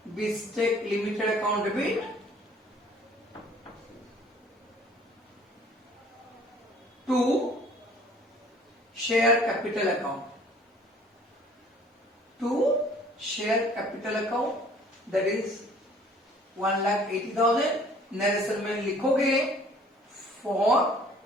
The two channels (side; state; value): both; normal; correlation 0.54